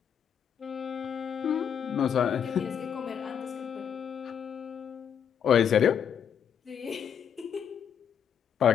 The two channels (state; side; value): quieter; right; 8.2 dB